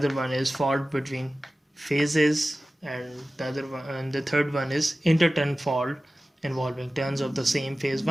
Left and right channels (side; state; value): both; normal; correlation 0.96